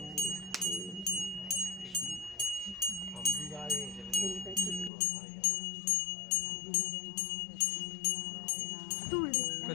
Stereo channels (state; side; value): drops out; right; at 4.9 s